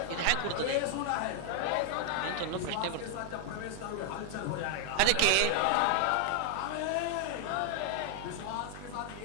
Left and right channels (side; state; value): both; different; correlation 0.00